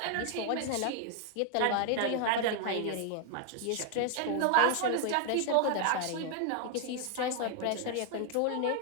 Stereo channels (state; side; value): different; both; correlation 0.00